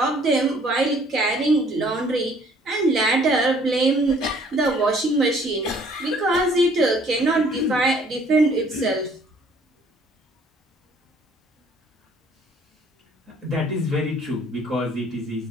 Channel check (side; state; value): both; normal; correlation 0.59